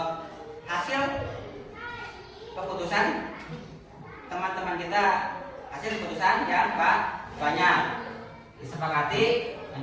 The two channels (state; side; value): identical; both; correlation 1.00